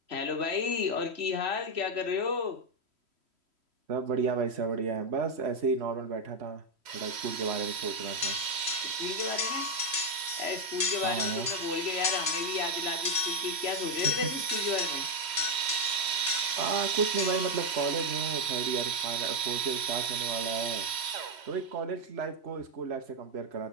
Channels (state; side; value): late; left; 3.1 ms